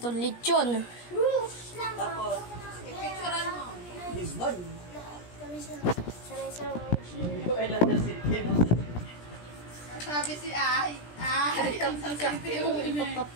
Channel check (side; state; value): right; late; 17 ms